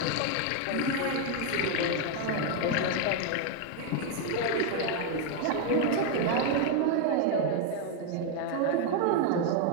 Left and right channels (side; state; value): both; different; correlation 0.01